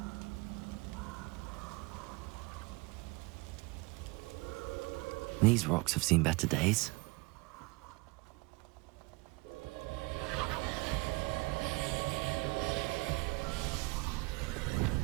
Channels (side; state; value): left; quieter; 25.7 dB